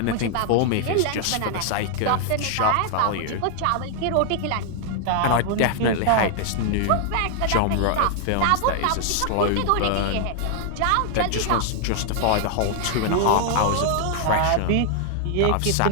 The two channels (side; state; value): both; different; correlation 0.00